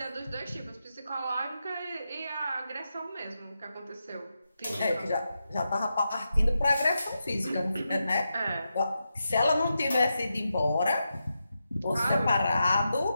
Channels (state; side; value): inverted; both; correlation -0.88